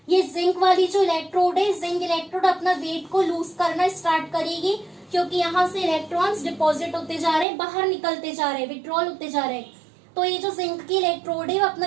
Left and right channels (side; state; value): left; drops out; at 7.5 s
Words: ये जिंक वाली जो इलेक्ट्रोड है, जिंक इलेक्ट्रोड अपना वेट को लूज करना स्टार्ट करेगी क्योंकि यहाँ से इलेक्ट्रॉन्स डिपॉजिट होते जा रहे हैं, बाहर निकलते जा रहे हैं, विड्रॉल होते जा रहे हैं। तो ये जो जिंक की इलेक्ट्रोड है वो अपना